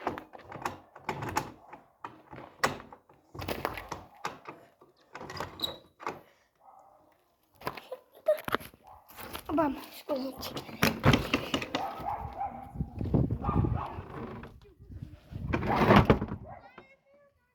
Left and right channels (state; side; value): identical; both; correlation 1.00